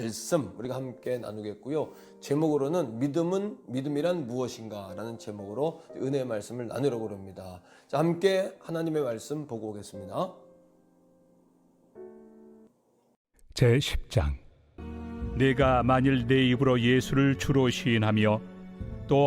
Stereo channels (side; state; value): both; identical; correlation 1.00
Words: 우리가 함께 나누겠고요. 제목으로는 믿음이란 무엇인가라는 제목으로 은혜의 말씀을 나누려고 합니다. 자, 함께 하나님의 말씀 보고 오겠습니다. 제 10장. 내가 만일 내 입으로 예수를 주로 시인하며 또